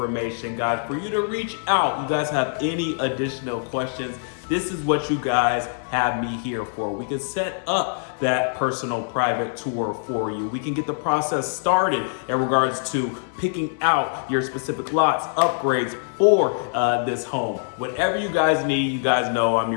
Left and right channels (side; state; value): right; silent; 60 dB below the other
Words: guys, for you to reach out. You guys have any additional questions, this is what you guys have me here for. We can set up that personal private tour for you. We can get the process started in regards to picking out your specific lots, upgrades for this home. Whatever you guys need, you guys know I'm